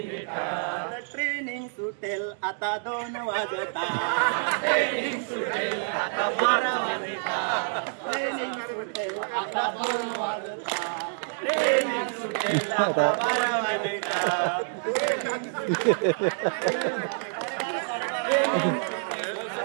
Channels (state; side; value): silent; left; digital silence